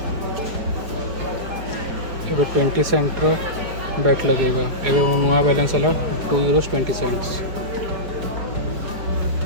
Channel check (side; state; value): left; late; 4.8 ms